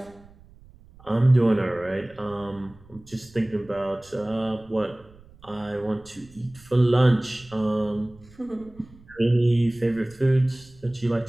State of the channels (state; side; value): noise; right; rumble, 25 dB below the sound